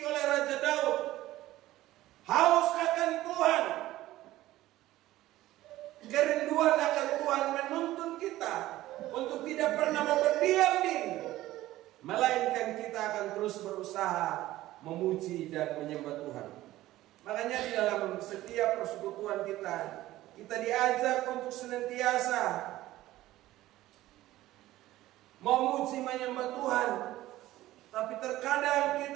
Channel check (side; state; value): left; quieter; 15.8 dB